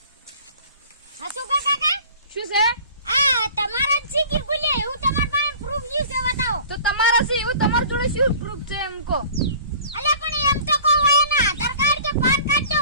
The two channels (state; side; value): inverted; both; correlation -0.45